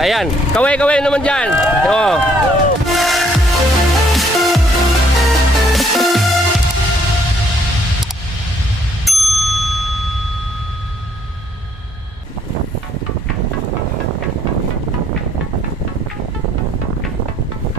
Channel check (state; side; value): normal; both; correlation 0.66